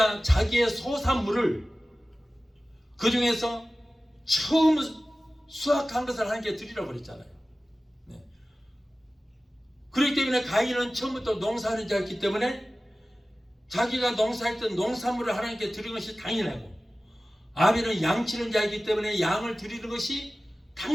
자기의 소산물을 그 중에서 처음 수확한 것을 하나님께 드리라고 그랬잖아요. 네. 그렇기 때문에 가인은 처음부터 농사하는 자였기 때문에 자기가 농사했던 농산물을 하나님께 드리는 것이 당연하고, 아벨은 양치는 자이기 때문에 양을 드리는 것이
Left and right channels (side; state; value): both; normal; correlation 0.96